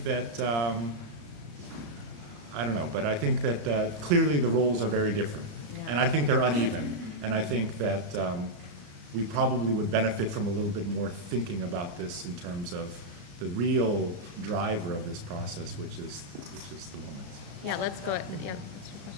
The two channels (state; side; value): late; left; 34 ms